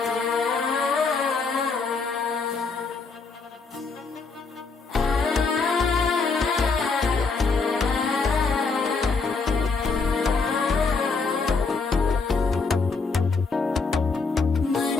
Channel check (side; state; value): right; quieter; 4.4 dB